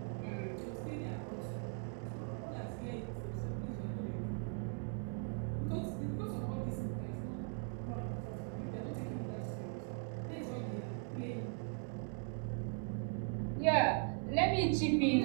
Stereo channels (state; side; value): silent; left; 51 dB below the other